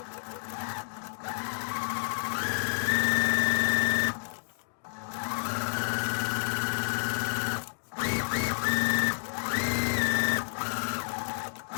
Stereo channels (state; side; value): silent; right; digital silence